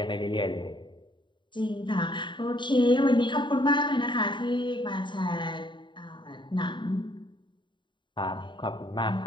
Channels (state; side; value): late; right; 0.23 ms